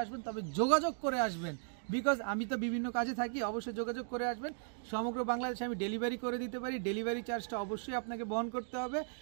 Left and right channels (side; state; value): left; silent; digital silence